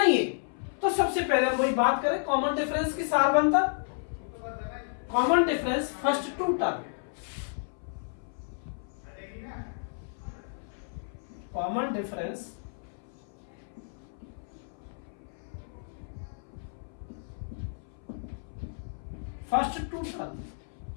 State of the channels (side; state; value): right; silent; 57 dB below the other